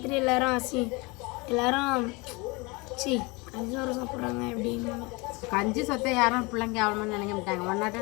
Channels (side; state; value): right; quieter; 26.4 dB